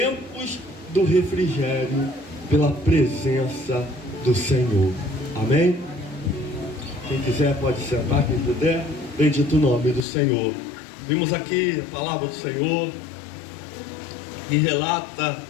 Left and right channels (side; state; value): right; drops out; at 10.1 s